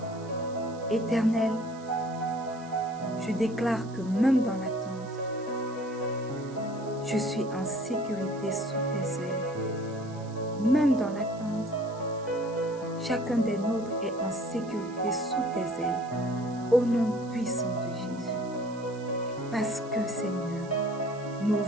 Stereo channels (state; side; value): noise; right; hiss, 23 dB below the sound